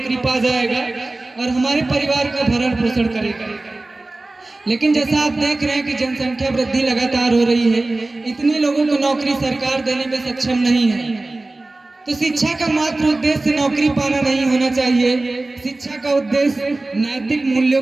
पा जाएगा और हमारे परिवार का भरण पोषण करेगा। लेकिन जैसा आप देख रहे हैं कि जनसंख्या वृद्धि लगातार हो रही है, इतने लोगों को नौकरी सरकार देने में सक्षम नहीं है। तो शिक्षा का मात्र उद्देश्य नौकरी पाना नहीं होना चाहिए। शिक्षा का उद्देश्य नैतिक मूल्यों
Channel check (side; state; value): left; quieter; 3.0 dB